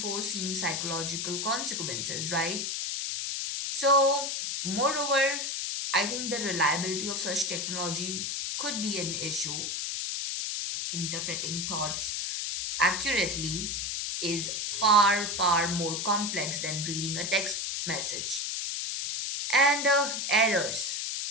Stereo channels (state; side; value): noise; left; hiss, 2 dB below the sound